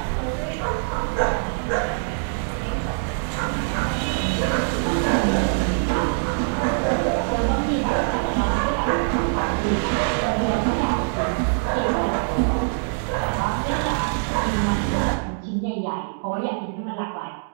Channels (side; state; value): left; silent; digital silence